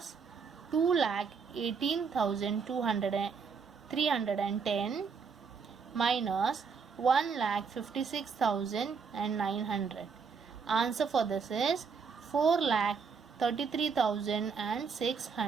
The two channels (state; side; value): quieter; left; 5.7 dB